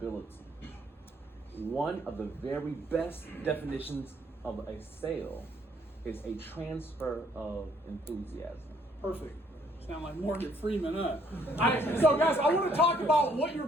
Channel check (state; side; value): normal; both; correlation 0.65